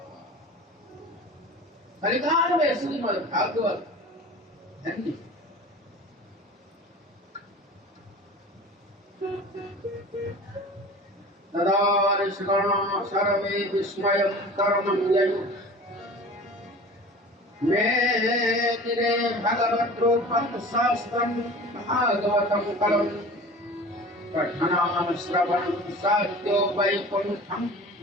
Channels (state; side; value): normal; both; correlation 0.39